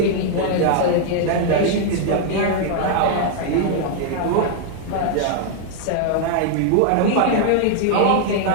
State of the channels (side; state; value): both; different; correlation 0.00